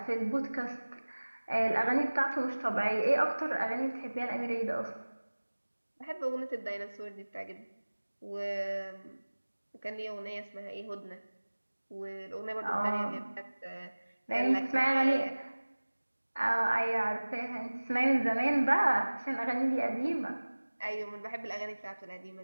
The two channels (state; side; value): inverted; both; correlation -1.00